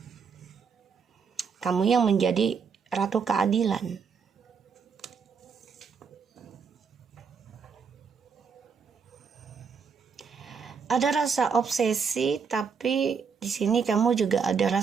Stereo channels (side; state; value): left; quieter; 6.0 dB